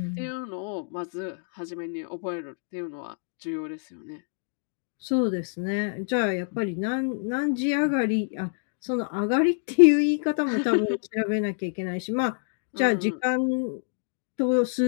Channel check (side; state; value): right; silent; 60 dB below the other